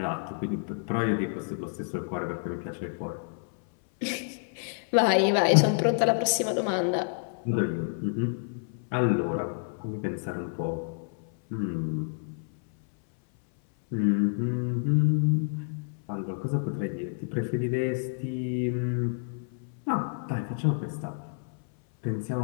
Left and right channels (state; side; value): silent; right; 59 dB below the other